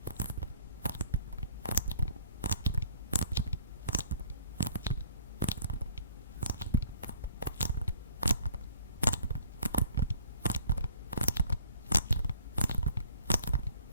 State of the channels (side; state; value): both; inverted; correlation -0.56